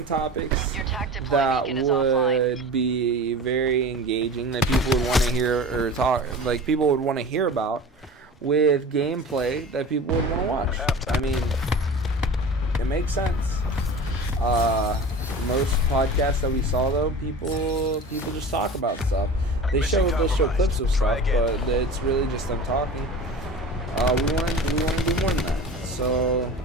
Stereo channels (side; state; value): both; normal; correlation 0.35